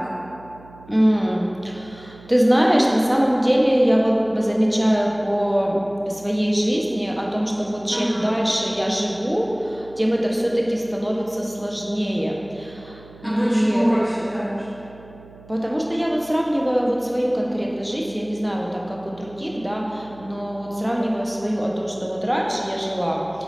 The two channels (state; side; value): noise; right; hum, 22 dB below the sound